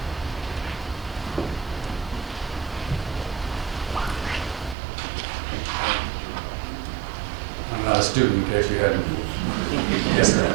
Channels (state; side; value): drops out; left; at 4.8 s